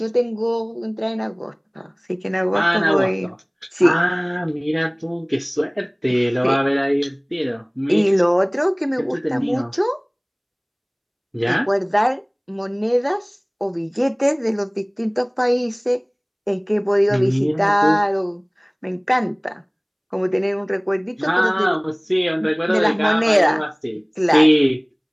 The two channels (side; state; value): both; identical; correlation 1.00